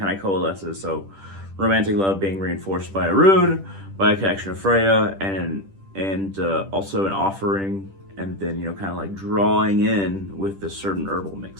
of coalesces. So romantic love being reinforced by a rune, by a connection of Freya, and also an offering, and then, you know, kind of like drawing in with this certain herbal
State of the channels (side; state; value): left; late; 10 ms